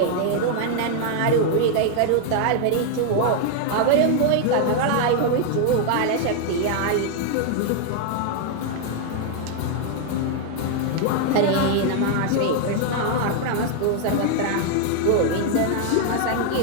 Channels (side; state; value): both; different; correlation 0.00